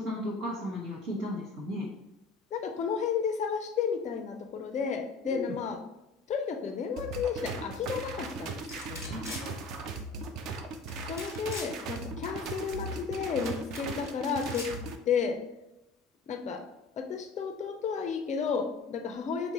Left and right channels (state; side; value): quieter; right; 4.1 dB